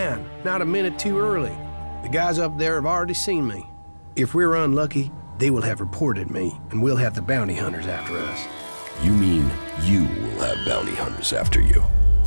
not a minute too early. The guys up there have already seen me. If we're unlucky, they will have reported me, and we'll have the bounty hunters after us. You mean you will have bounty hunters after you?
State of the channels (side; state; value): both; inverted; correlation -1.00